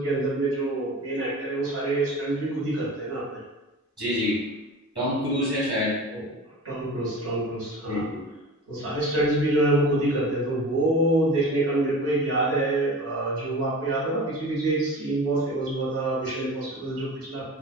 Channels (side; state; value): both; normal; correlation 0.36